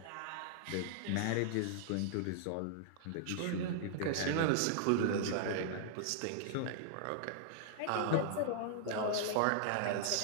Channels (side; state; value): both; different; correlation -0.01